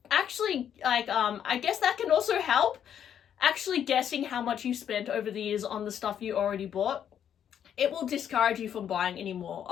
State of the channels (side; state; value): right; quieter; 9.2 dB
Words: actually, like, I guess that can also help, actually guessing how much you spent over the years on the stuff you already bought. It will discourage you from buying anymore,